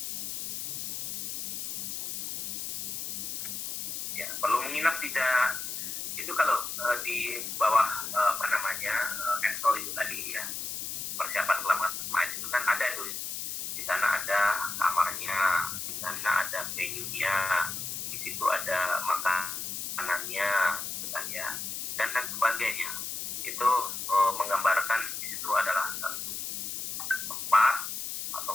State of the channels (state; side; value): noise; left; hiss, 4 dB below the sound